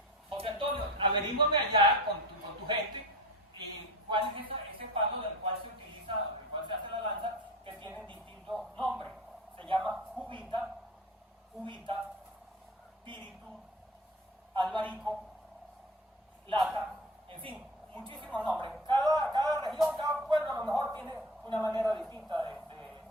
José Antonio, averígame allá con tu gente, y cuál es ese palo del cual se utiliza, del cual se hace la lanza, que tienen distintos nombres. Se llama cubita, píritu, albarico, lata, en fin, muchísimos nombres. Cada región, cada pueblo a lo mejor tiene una manera distinta de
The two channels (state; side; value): normal; both; correlation 0.34